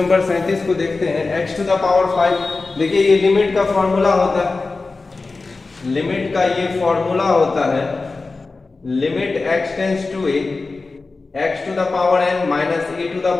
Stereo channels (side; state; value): right; quieter; 3.8 dB